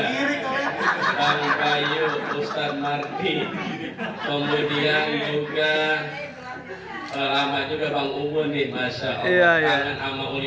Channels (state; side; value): identical; both; correlation 1.00